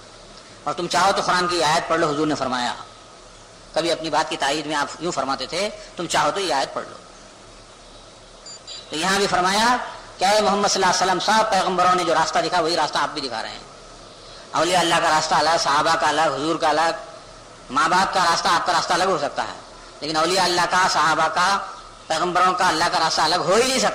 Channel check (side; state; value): both; identical; correlation 1.00